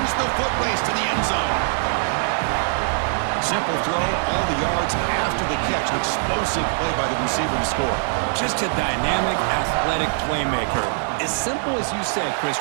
the foot race to the end zone. Simple throw, all the yards after the catch. An explosive play by the receiver to score. Just a dynamic, athletic playmaker. As simple as you said, Chris,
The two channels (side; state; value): left; silent; digital silence